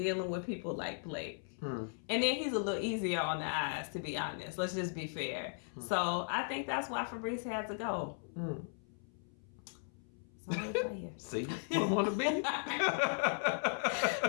with people like Blake. And then he's a little easier on the eyes, to be honest. Let's just be fair. So I think that's why Fabrice had to go. See, what want to be?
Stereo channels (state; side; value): silent; right; 53 dB below the other